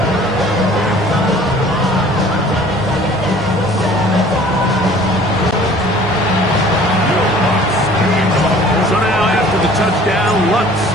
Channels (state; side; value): normal; both; correlation 0.50